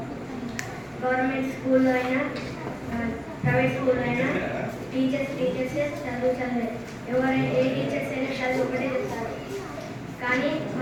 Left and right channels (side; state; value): both; identical; correlation 1.00